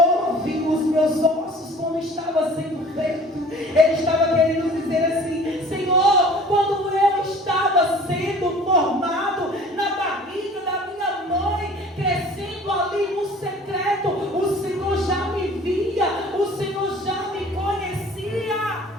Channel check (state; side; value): normal; both; correlation 0.47